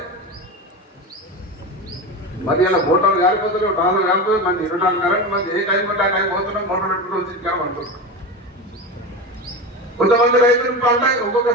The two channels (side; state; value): both; normal; correlation 0.23